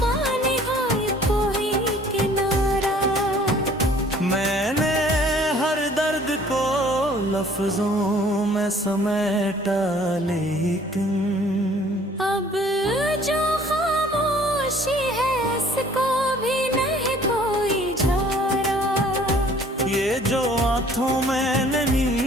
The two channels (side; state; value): both; normal; correlation 0.55